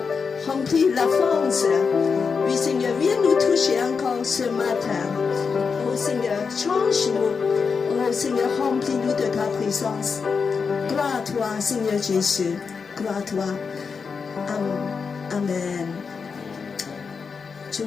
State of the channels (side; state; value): right; quieter; 5.5 dB